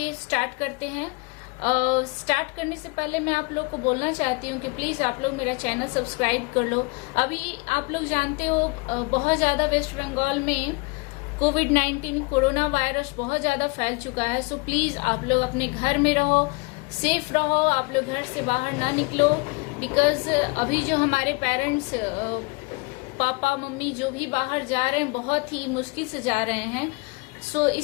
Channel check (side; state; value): right; quieter; 28.2 dB